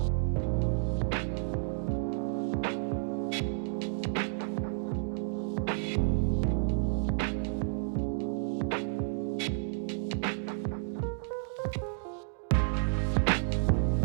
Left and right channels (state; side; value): silent; left; digital silence